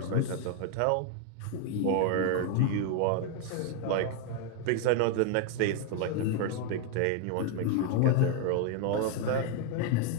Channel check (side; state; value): both; different; correlation 0.00